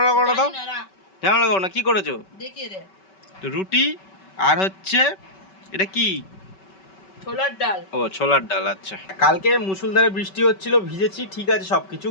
করো না তো, ঝামেলা করো না, কি করেছো? দেখিয়ে দে। রুটি আর হচ্ছে এটা কি, ছোলার ডাল। ও ছোলার ডাল, আচ্ছা। কালকে মুষলধারে বৃষ্টি হচ্ছিল, ভিজেছি, ঠিক আছে সবকিছু,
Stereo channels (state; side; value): late; right; 5.2 ms